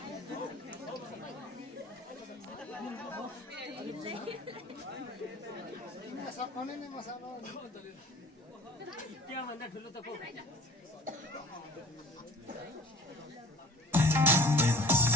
सकाउने नै मसाला त्यहाँभन्दा ठुलो त को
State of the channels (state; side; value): normal; both; correlation 0.47